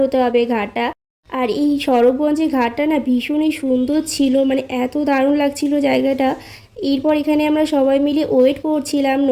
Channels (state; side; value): identical; both; correlation 1.00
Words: হতে হবে ঘাটটা। আর এই স্বরূপগঞ্জের ঘাটটা না ভীষণই সুন্দর ছিল, মানে এত দারুণ লাগছিল জায়গাটা। এরপর এখানে আমরা সবাই মিলে ওয়েট করছিলাম